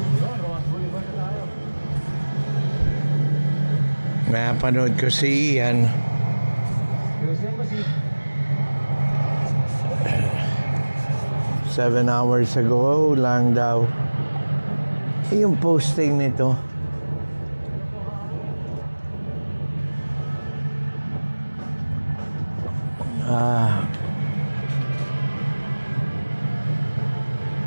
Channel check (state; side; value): inverted; both; correlation -1.00